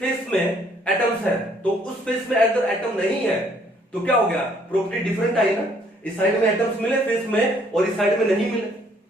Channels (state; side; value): normal; both; correlation 0.64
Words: में एटम्स है, तो उस फेस में अगर एटम नहीं है तो क्या हो गया, प्रॉपर्टी डिफरेंट आई ना। इस साइड में एटम्स मिले फेस में और इस साइड में नहीं मिले,